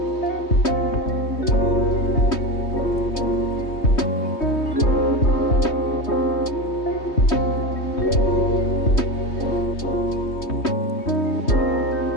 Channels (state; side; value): late; right; 3.2 ms